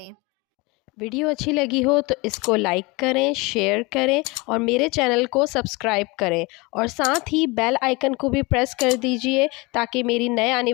ویڈیو اچھی لگی ہو تو اس کو لائک کریں، شیئر کریں اور میرے چینل کو سبسکرائب کریں اور ساتھ ہی بیل آئیکن کو بھی پریس کر دیجئے تاکہ میری نئے آنے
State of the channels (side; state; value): right; quieter; 25.2 dB